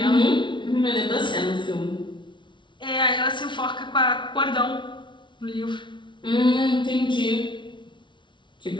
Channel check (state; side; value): late; right; 0.24 ms